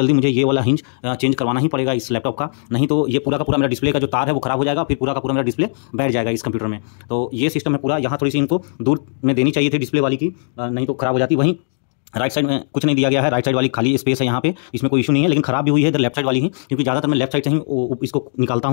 मुझे ये वाला हिंज चेंज करवाना ही पड़ेगा इस लैपटॉप का, नहीं तो ये पूरा का पूरा मेरा डिस्प्ले का जो तार है वो खराब हो जाएगा, फिर पूरा का पूरा मेरा डिस्प्ले बैठ जाएगा इस कंप्यूटर में। तो ये सिस्टम है पूरा, यहाँ थोड़ी सी इनको दूर में देनी चाहिए थी डिस्प्ले वाली की, नहीं तो खराब हो जाती। वहीं राइट साइड में कुछ नहीं दिया गया है, राइट साइड वाली खाली स्पेस है यहाँ पे, इसमें कोई इशू नहीं है, लेकिन खराब भी हुई है इधर लेफ्ट साइड वाली ही, क्योंकि ज़्यादातर मैं लेफ्ट साइड से ही इसको निकालता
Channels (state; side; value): silent; right; 67 dB below the other